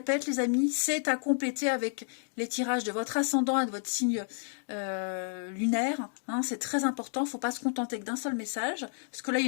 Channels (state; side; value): silent; right; digital silence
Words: les amis, c'est à compléter avec les tirages de votre ascendant et de votre signe lunaire. C'est très important, il ne faut pas se contenter que d'un seul message, parce que là il